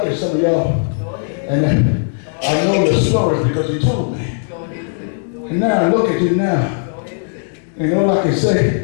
at some of y'all, and I know the stories because he told me. And now I look at you now, and all I can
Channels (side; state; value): right; silent; digital silence